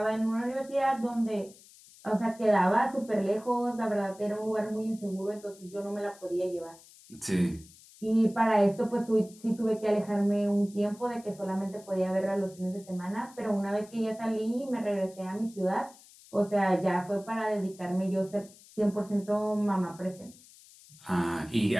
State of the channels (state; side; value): noise; left; hiss, 23 dB below the sound